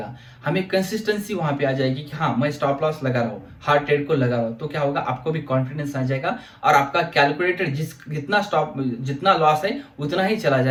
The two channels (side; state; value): both; identical; correlation 1.00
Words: हमें कंसिस्टेंसी वहां पे आ जाएगी कि हाँ, मैं स्टॉप लॉस लगा रहा हूँ, हार्ड ट्रेड को लगा रहा हूँ। तो क्या होगा, आपको भी कॉन्फिडेंस आ जाएगा, और आपका कैलकुलेटेड जितना लॉस है उतना ही चला